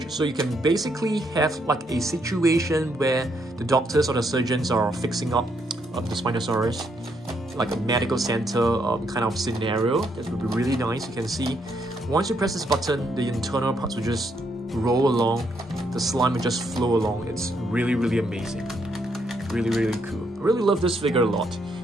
So you can basically have like a situation where the doctors or the surgeons are fixing up the Spinosaurus, like a medical center kind of scenario. That would be really nice. You can see once you press this button, the internal parts will just roll along. The slime will just flow along. It's really, really amazing. Really, really cool. I really love this figure a lot.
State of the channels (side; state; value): both; normal; correlation 0.75